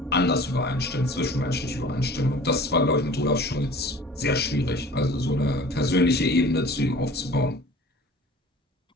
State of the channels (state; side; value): normal; both; correlation 0.45